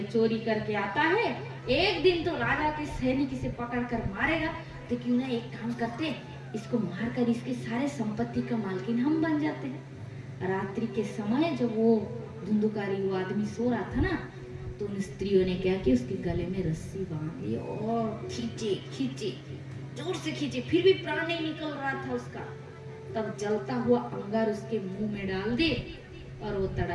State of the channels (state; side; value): identical; both; correlation 1.00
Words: चोरी करके आता है, एक दिन तो राजा के सैनिक इसे पकड़ कर मारेगा, तो क्यों ना एक काम करते, इसको मारकर इसके सारे संपत्ति का मालकिन हम बन जाते हैं। रात्रि के समय जब वो धुंधुकारी वो आदमी सो रहा था ना, तो उन स्त्रियों ने क्या किया, उसके गले में रस्सी बांध ली और खींचे खींचे, जोर से खींचे, फिर भी प्राण नहीं निकल रहा था उसका। तब जलता हुआ अंगार उसके मुंह में डाल दे और वो